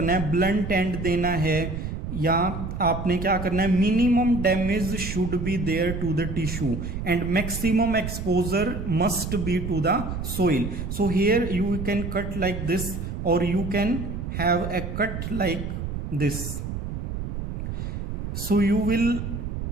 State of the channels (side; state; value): right; noise; rumble, 5 dB below the sound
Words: है, ब्लंट एंड देना है, या आपने क्या करना है, minimum damage should be there to the tissue and maximum exposure must be to the soil. So here you can cut like this, और you can have a cut like this. So you will